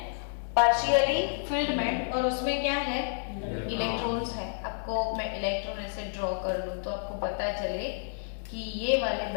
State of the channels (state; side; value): silent; right; digital silence